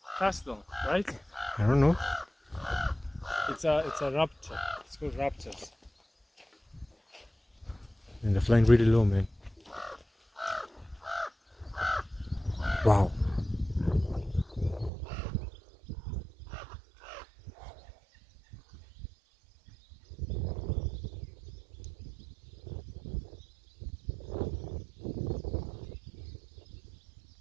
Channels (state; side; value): drops out; left; at 14.9 s